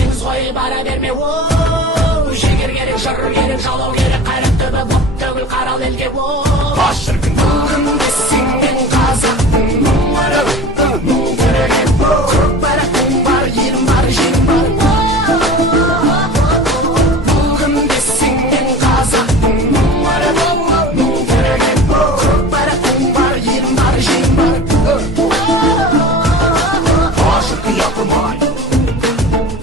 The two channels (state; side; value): normal; both; correlation 0.37